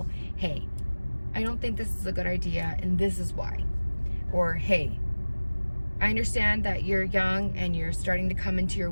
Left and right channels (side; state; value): both; inverted; correlation -1.00